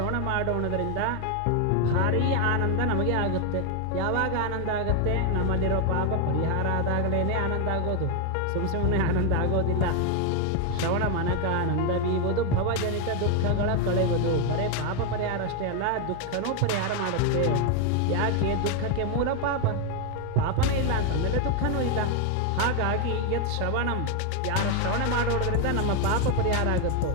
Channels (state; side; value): different; both; correlation 0.01